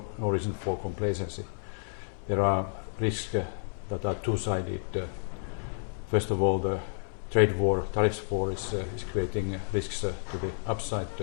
reason for complacency. There are risks that are two-sided. First of all, the trade war, tariffs war is creating risks to the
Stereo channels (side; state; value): right; silent; digital silence